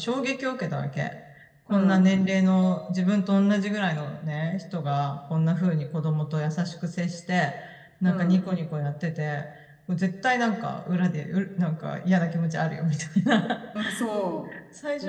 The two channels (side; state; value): both; identical; correlation 1.00